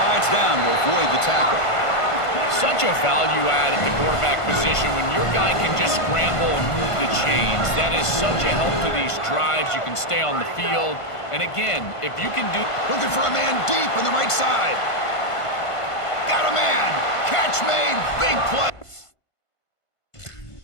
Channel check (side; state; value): right; late; 1.5 ms